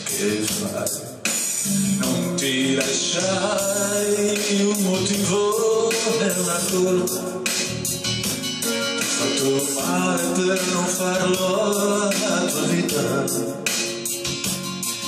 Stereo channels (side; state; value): both; identical; correlation 1.00